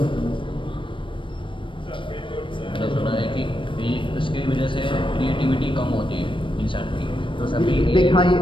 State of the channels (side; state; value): right; late; 0.24 ms